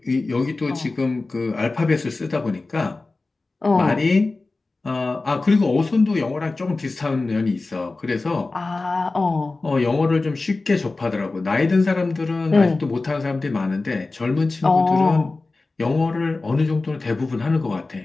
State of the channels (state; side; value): quieter; right; 3.4 dB